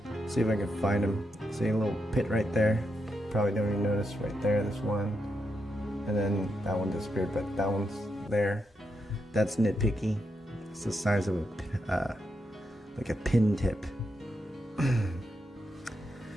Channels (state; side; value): normal; both; correlation 0.83